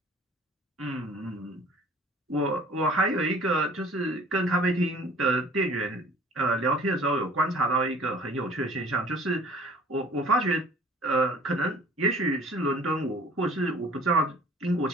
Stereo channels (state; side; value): normal; both; correlation 0.49